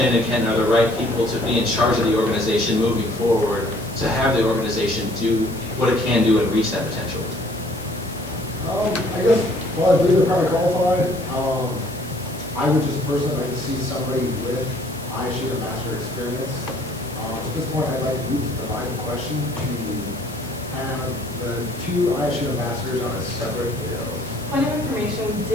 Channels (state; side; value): noise; left; hiss, 18 dB below the sound